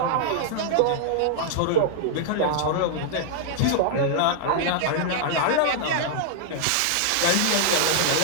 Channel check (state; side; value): different; both; correlation -0.01